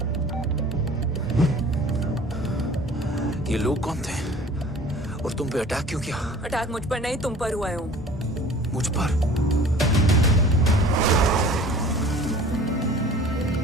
ये लोग कौन थे? और तुम पे अटैक क्यों किया? अटैक मुझ पर नहीं तुम पर हुआ है ओम। मुझ पर?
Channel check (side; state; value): both; normal; correlation 0.46